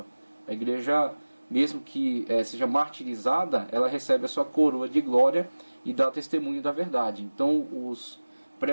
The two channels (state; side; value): inverted; both; correlation -1.00